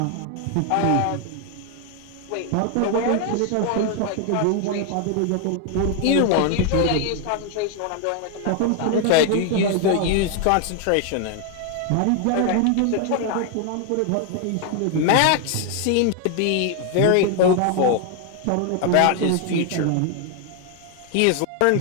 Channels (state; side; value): different; both; correlation 0.00